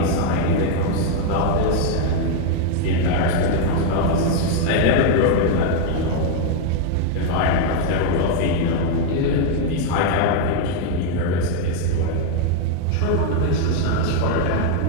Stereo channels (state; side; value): different; both; correlation 0.00